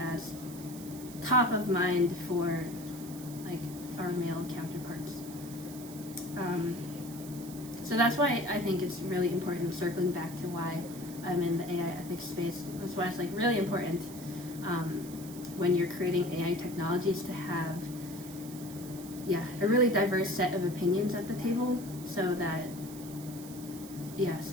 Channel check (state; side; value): noise; right; hiss, 15 dB below the sound